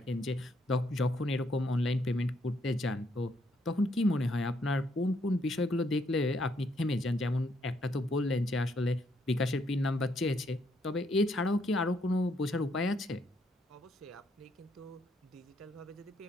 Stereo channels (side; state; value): both; normal; correlation 0.73